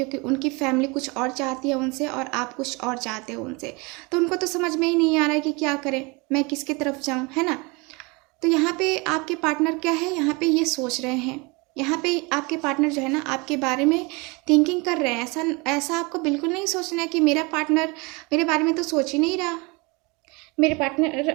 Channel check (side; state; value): left; quieter; 27.5 dB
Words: उनकी फैमिली कुछ और चाहती है उनसे और आप कुछ और चाहते हो उनसे। तो उनको तो समझ में ही नहीं आ रहा है कि क्या करें, मैं किसकी तरफ जाऊं, है ना। तो यहाँ पे आपके पार्टनर क्या है, यहाँ पे ये सोच रहे हैं, यहाँ पे आपके पार्टनर जो है ना आपके बारे में थिंकिंग कर रहे हैं। ऐसा ऐसा आपको बिल्कुल नहीं सोचना है कि मेरा पार्टनर मेरे बारे में तो सोच ही नहीं रहा, मेरे